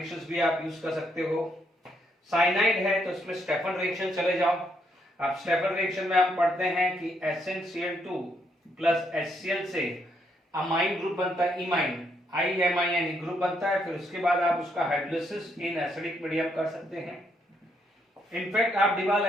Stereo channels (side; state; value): both; normal; correlation 0.74